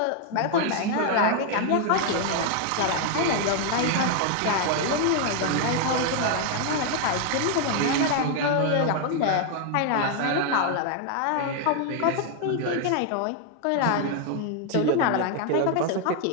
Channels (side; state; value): both; different; correlation 0.00